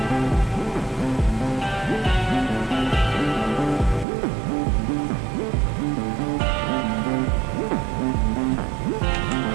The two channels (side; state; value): left; drops out; at 4.0 s